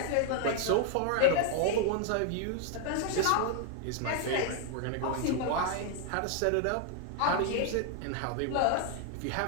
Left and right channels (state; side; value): different; both; correlation 0.00